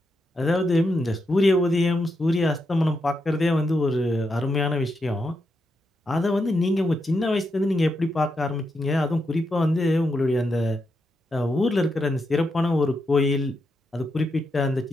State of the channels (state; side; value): normal; both; correlation 0.84